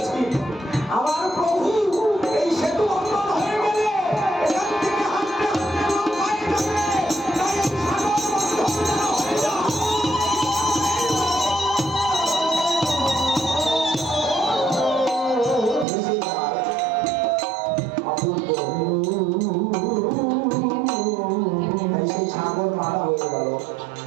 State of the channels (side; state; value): left; drops out; at 15.9 s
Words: আমার প্রভু এই সেতু বন্ধন হয়ে গেলে এখান থেকে হাঁটতে হাঁটতে লোক পায়ে যাবে, তাই এই সাগর বন্ধন যেন হয়ে যায়। তাই সেই সাগর মারা হয়ে গেল।